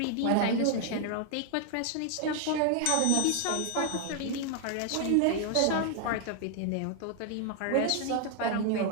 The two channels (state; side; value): different; both; correlation 0.00